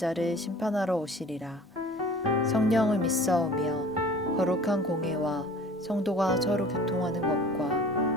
심판하러 오시리라. 성령을 믿사오며 거룩한 공회와 성도가 서로 교통하는 것과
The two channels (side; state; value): both; normal; correlation 0.46